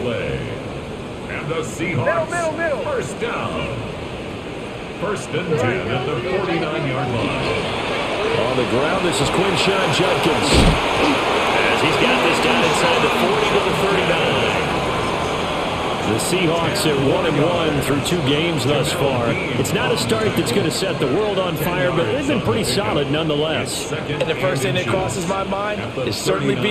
And the Seahawks first down. 1st and 10 at the 49-yard line. On the ground. This is Quinshawn Judkins. As he's got this down inside the 40 to the 39. The Seahawks are 1-1 through 2 games thus far. It's not a start that's going to set the world on fire, but they've been pretty solid nonetheless. And the first thing that crosses my mind, it certainly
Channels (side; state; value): both; identical; correlation 1.00